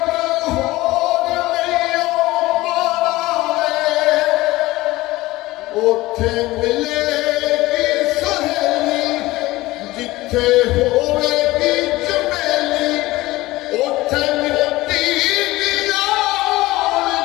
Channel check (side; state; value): right; quieter; 18.7 dB